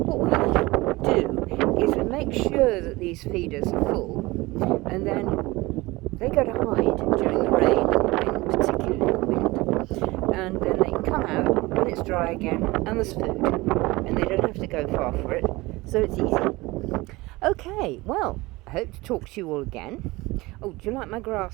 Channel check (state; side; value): quieter; left; 21.4 dB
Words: we do is we make sure that these feeders are full, and then they go to hide during the rain, and particularly the wind. and then they can come out when it's dry again and there's food, and they don't have to go far for it, so it's easy. Okay, well, I hope to talk to you all again. Oh, do you like my